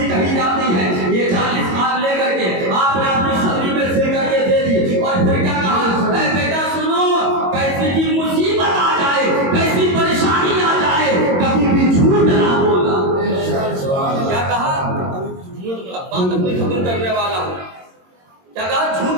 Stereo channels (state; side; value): late; left; 22 ms